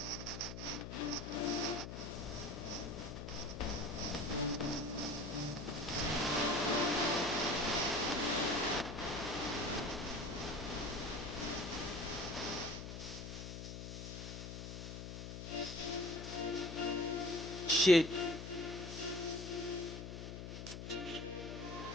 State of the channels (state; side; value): noise; left; hum, 8 dB below the sound